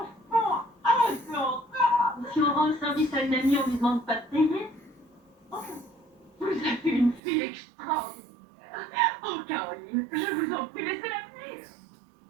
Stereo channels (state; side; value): drops out; left; at 7.2 s